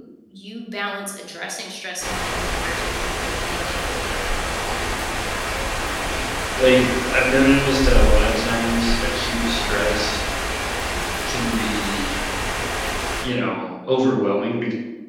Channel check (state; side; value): identical; both; correlation 1.00